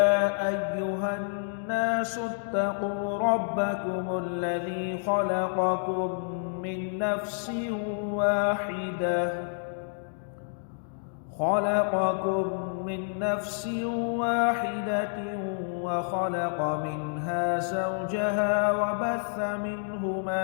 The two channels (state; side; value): silent; right; digital silence